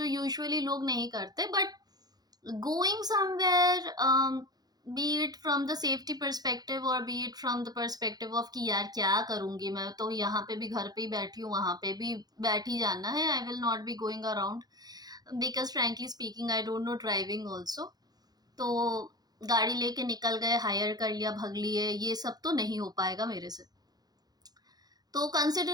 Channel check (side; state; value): left; late; 0.19 ms